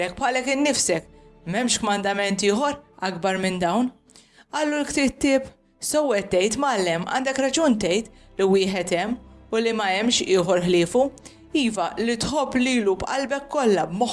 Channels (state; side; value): identical; both; correlation 1.00